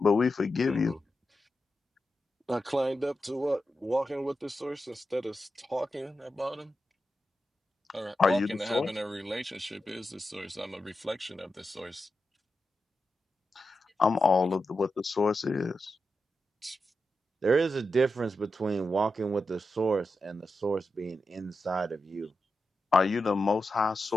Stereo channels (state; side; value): normal; both; correlation 0.89